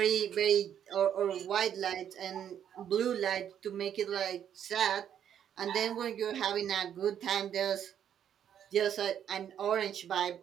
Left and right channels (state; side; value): quieter; left; 9.4 dB